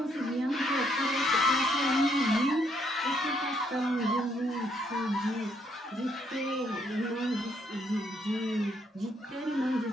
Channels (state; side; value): normal; both; correlation 0.71